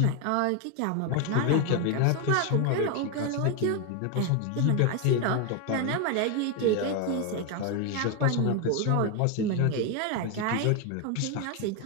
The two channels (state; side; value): different; both; correlation 0.02